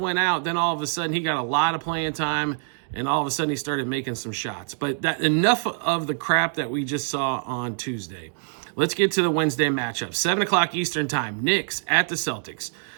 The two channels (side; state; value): left; silent; digital silence